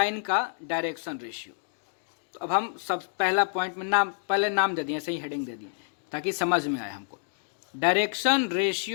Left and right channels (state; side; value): silent; right; digital silence